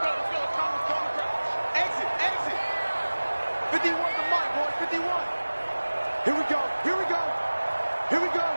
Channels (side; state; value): both; inverted; correlation -1.00